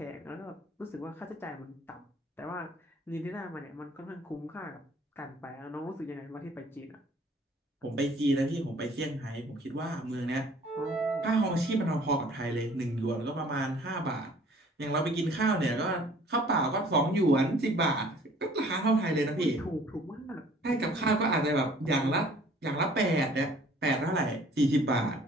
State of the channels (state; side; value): normal; both; correlation 0.54